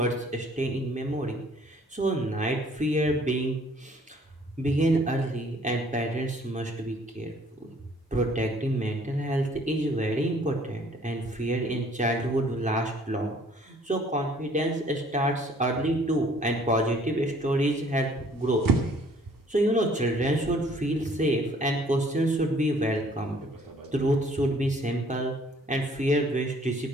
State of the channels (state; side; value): normal; both; correlation 0.58